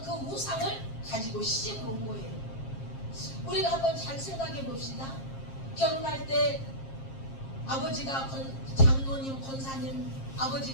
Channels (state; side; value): late; right; 7.5 ms